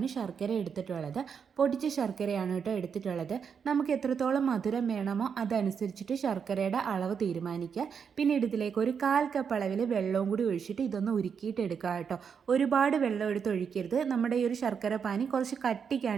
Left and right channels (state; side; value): quieter; left; 6.7 dB